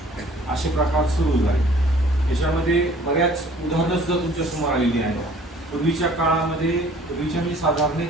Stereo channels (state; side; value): normal; both; correlation 0.53